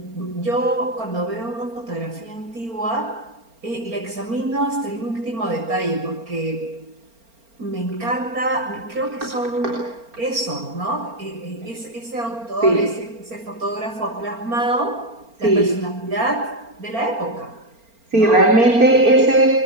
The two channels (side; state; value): left; late; 4.4 ms